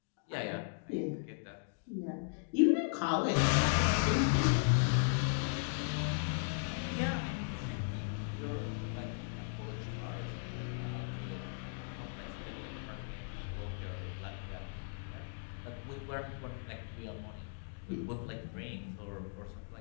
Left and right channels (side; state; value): right; silent; digital silence